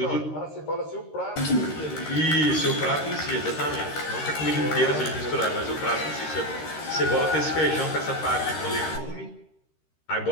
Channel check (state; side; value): late; right; 13 ms